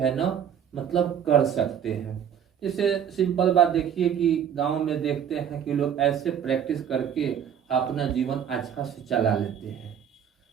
ना मतलब कर सकते हैं। जैसे सिंपल बात देखिए कि गांव में देखते हैं कि लोग ऐसे प्रैक्टिस करके अपना जीवन अच्छा से चला लेते हैं।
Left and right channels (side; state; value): left; quieter; 8.6 dB